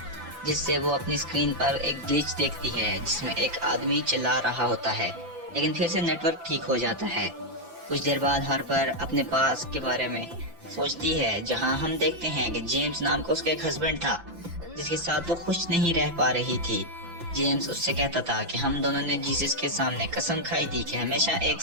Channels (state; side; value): late; left; 5.9 ms